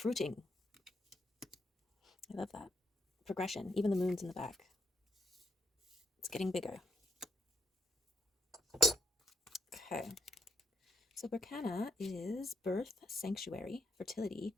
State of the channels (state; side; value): normal; both; correlation 0.78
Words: I love that. Progression. Even the moon's in the back. It's getting bigger. Okay. So Berkana is birth, sanctuary, fertility,